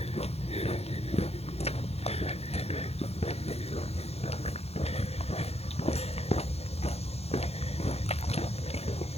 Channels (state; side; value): late; right; 0.30 ms